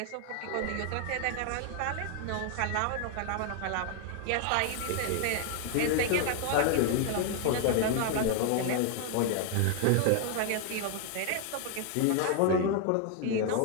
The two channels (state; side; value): different; both; correlation 0.00